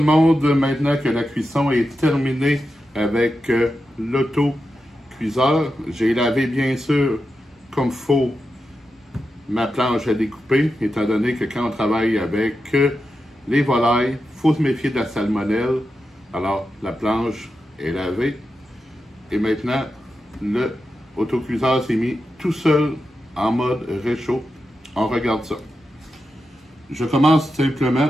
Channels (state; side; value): normal; both; correlation 0.89